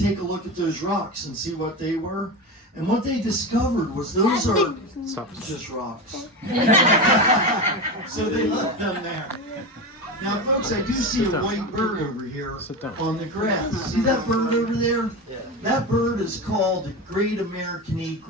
a look at those rocks and see what they were. And what they discovered was those are just rocks. So they left them there. Now, folks, I do see a white bird over here on the grass. See that bird over there? That bird is called the Great American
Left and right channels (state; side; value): normal; both; correlation 0.22